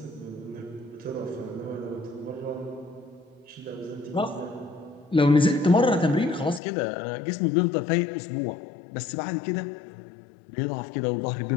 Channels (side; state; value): right; drops out; at 6.6 s